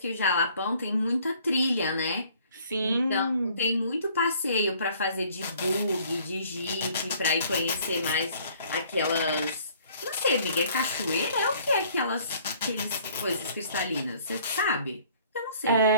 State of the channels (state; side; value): inverted; both; correlation -0.57